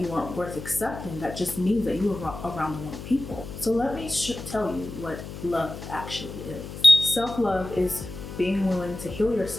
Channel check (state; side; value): noise; left; hum, 11 dB below the sound